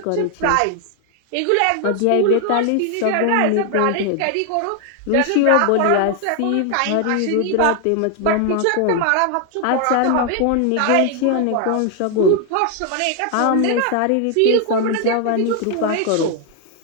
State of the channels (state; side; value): different; both; correlation 0.00